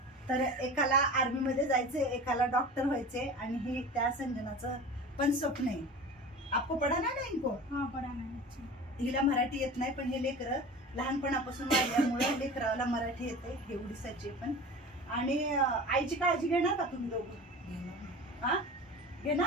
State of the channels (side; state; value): both; normal; correlation 0.35